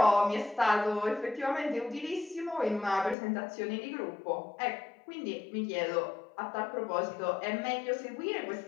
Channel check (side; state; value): right; drops out; at 3.2 s